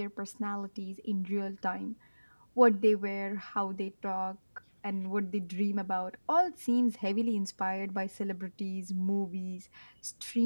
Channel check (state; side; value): inverted; both; correlation -1.00